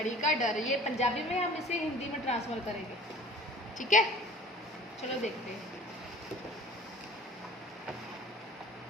का डर। ये पंजाबी में हम इसे हिंदी में ट्रांसफर करेंगे, ठीक है? चलो देखते हैं।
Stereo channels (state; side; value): normal; both; correlation 0.45